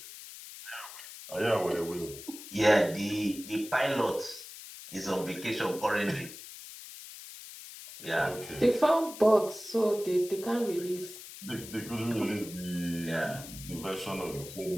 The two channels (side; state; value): left; noise; hiss, 14 dB below the sound